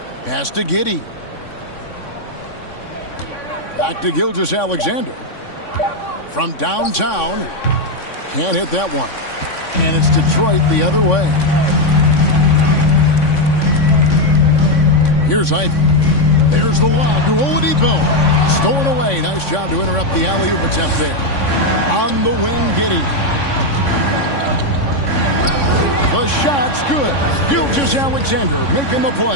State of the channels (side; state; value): right; late; 3.6 ms